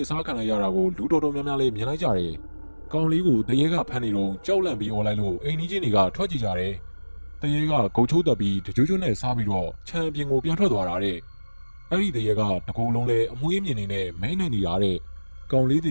စားခံလိုက်ရတာကိုလူတော်တော်များများလေးမြင်လိုက်ကြတယ်ကောင်လေးကိုတရေကဖမ်းနေတော့ကြောက်လန့်ပြီးអော်လိုက်လို့အိမ်ကြီးချင်းတွေကထွက်ကြည့်ကြတယ်တရေကဂုတ်ချိုးတက်ပြီးတကြွကြွနဲ့စားပြီးတော့ခြံပြင်ကိုပြန်ထွက်သွားတာတဲ့အဲ့ဒီတရေကတကူလုံးလဲအမွှေးမြင်နေနဲ့မဲနေနေတာတဲ့ကောင်လေးတည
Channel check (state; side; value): inverted; both; correlation -1.00